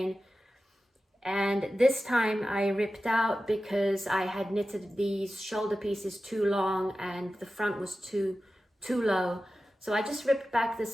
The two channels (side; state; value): both; normal; correlation 0.94